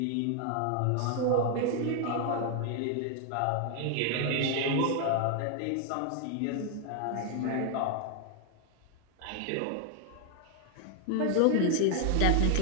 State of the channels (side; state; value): both; different; correlation 0.00